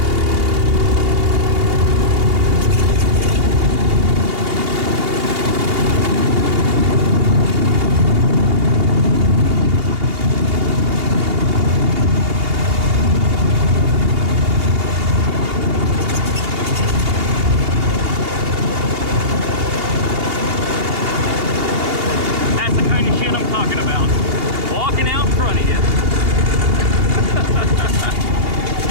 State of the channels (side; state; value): left; late; 2.8 ms